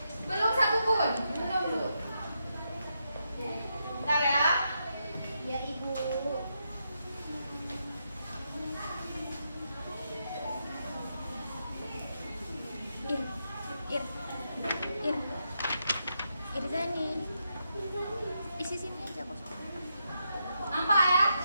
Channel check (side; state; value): both; inverted; correlation -0.83